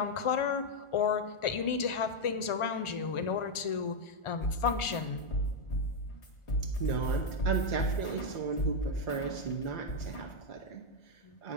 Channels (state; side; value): late; right; 1.4 ms